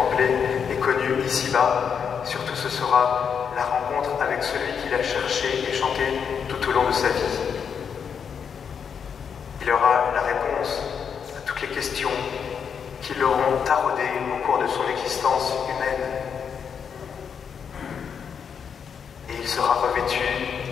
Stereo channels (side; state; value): right; quieter; 7.0 dB